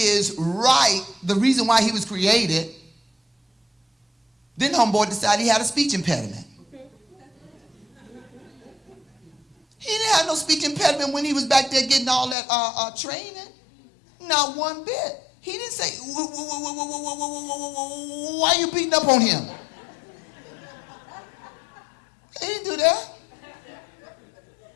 right, the reason why he was created, then homeboy decided he had a speech impediment. He didn't have no speech impediment when he was back there getting all that training. Not one bit. He didn't say, why are you beating up on him? He didn't do that.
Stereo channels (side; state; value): right; drops out; at 12.4 s